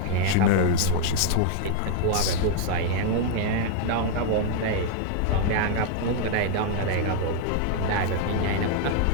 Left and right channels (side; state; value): both; different; correlation -0.01